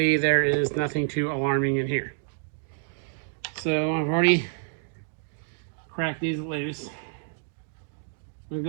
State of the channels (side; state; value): left; silent; digital silence